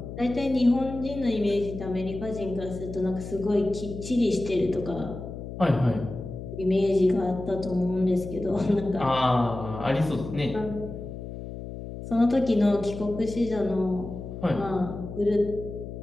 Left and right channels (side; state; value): left; noise; hum, 9 dB below the sound